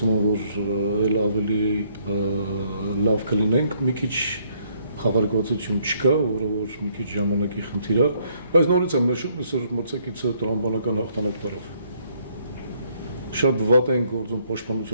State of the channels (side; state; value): both; inverted; correlation -0.69